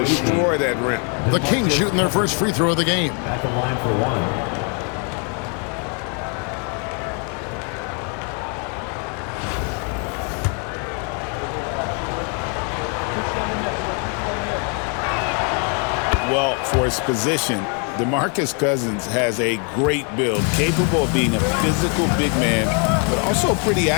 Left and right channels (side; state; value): right; quieter; 38.4 dB